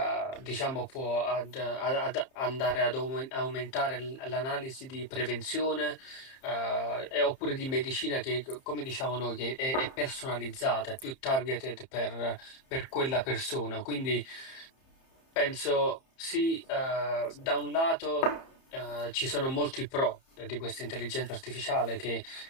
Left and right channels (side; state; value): right; late; 30 ms